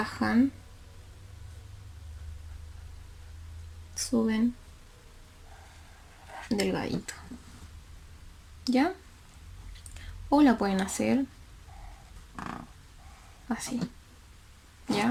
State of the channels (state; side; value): identical; both; correlation 1.00